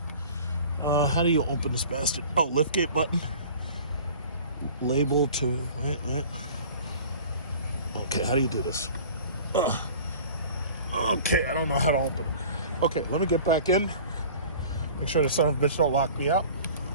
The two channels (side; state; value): both; inverted; correlation -0.43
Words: How do you open this bastard? Oh, liftgate button. Label to wait. Okay, how do you do this? Okay, I don't know how to open it. Okay, let me get back in. Make sure the son of a bitch don't lock me out.